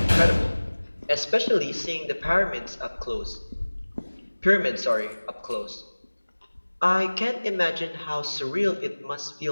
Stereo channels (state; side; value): inverted; both; correlation -1.00